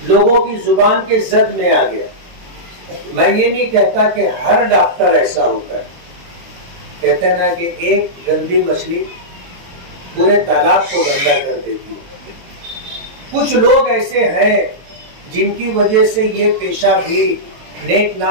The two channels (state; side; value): late; left; 23 ms